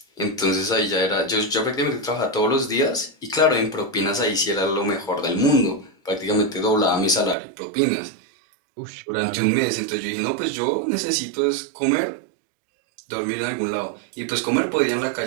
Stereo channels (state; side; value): drops out; left; at 7.4 s